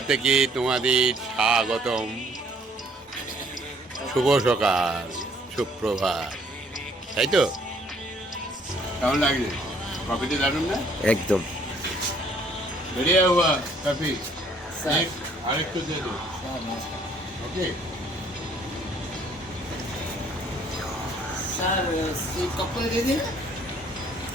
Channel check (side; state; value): both; normal; correlation 0.62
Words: থেকে তোমাদের স্বাগতম। শুভ সকাল, সুপ্রভাত, তাই তো? কেমন লাগছে? কফিটা দারুন না? একদম बढ़िया हुआ कॉफी। एक আরেকটু দে দো। ओके सर कप को दे देना,